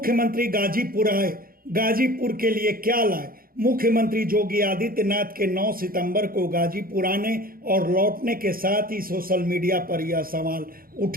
मुख्यमंत्री गाजीपुर आए, गाजीपुर के लिए क्या लाए। मुख्यमंत्री योगी आदित्यनाथ के 9 सितंबर को गाजीपुर आने और लौटने के साथ ही सोशल मीडिया पर यह सवाल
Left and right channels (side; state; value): left; late; 0.42 ms